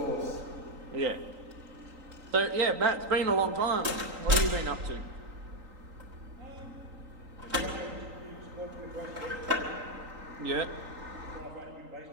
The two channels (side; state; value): left; late; 3.9 ms